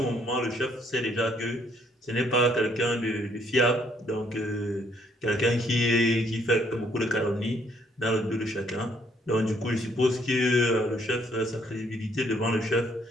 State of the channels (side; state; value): both; normal; correlation 0.67